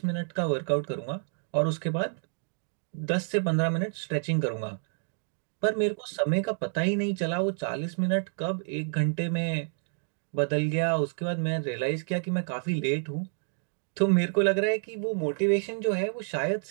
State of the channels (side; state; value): left; silent; digital silence